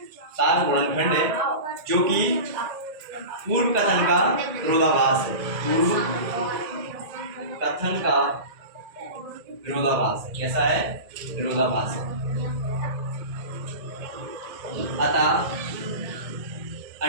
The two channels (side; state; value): left; late; 2.1 ms